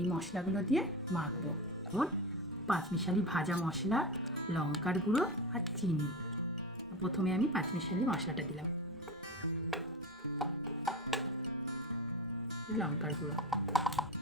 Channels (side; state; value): both; normal; correlation 0.24